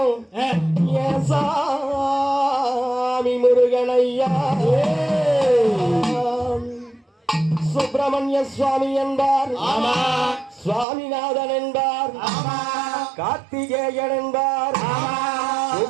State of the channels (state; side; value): drops out; left; at 10.9 s